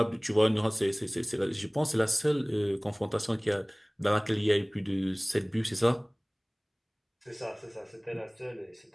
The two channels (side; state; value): both; identical; correlation 1.00